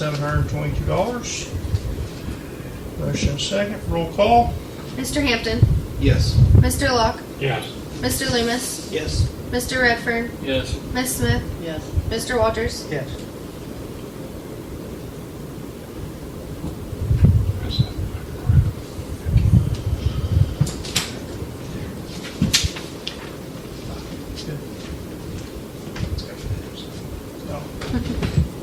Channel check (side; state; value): both; identical; correlation 1.00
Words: Motion second. Roll call. Mr. Hampton, Yes. Mr. Locke, Yes. Mr. Loomis, Yes. Mr. Redfern, Yes. Ms. Smith, Yes. Mr. Walters. Yes. Good. No.